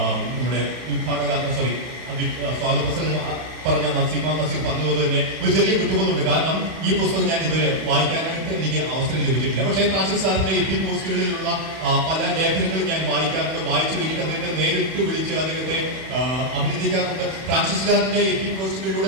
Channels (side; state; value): left; late; 31 ms